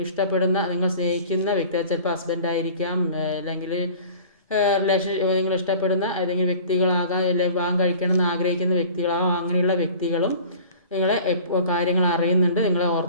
ഇഷ്ടപ്പെടുന്ന, നിങ്ങൾ സ്നേഹിക്കുന്ന വ്യക്തി, ചിലപ്പോൾ ഹസ്ബൻഡായിരിക്കാം, അല്ലെങ്കിൽ നിങ്ങൾ ഇഷ്ടപ്പെടുന്ന ഏതെങ്കിലും വ്യക്തികളാകാം, അല്ലെങ്കിൽ വിവാഹം കഴിക്കണമെന്ന് ആഗ്രഹിക്കുന്ന വ്യക്തികളാകാം. അങ്ങനെയുള്ള വ്യക്തികളും നിങ്ങളെ കാര്യങ്ങൾ അറിയുന്നുണ്ട്, നിങ്ങളെ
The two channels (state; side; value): inverted; both; correlation -0.44